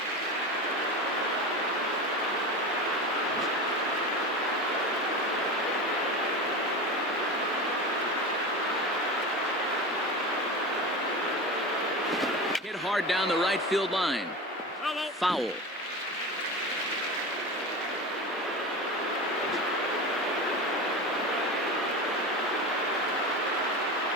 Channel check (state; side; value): normal; both; correlation 0.26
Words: Hit hard down the right field line. Foul.